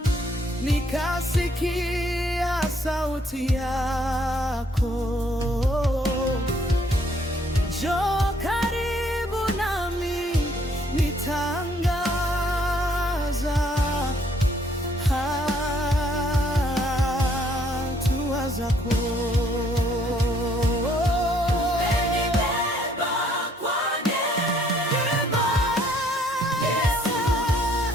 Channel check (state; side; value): normal; both; correlation 0.65